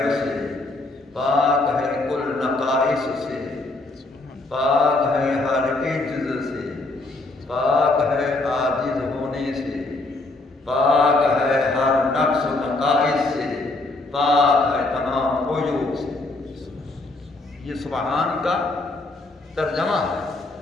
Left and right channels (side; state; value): right; quieter; 3.1 dB